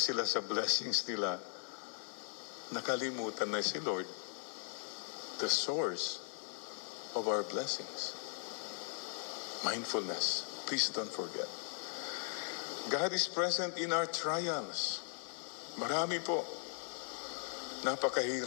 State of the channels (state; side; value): silent; right; digital silence